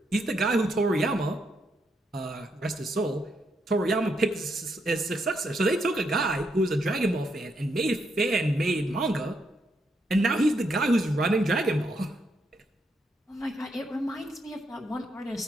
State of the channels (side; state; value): both; normal; correlation 0.78